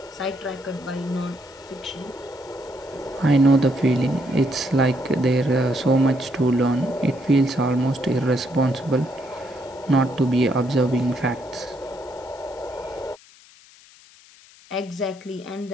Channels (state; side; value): noise; left; hiss, 25 dB below the sound